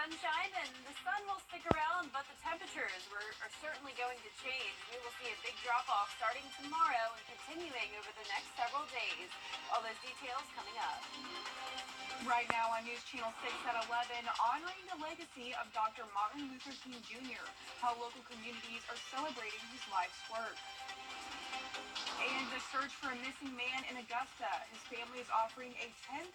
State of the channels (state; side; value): identical; both; correlation 1.00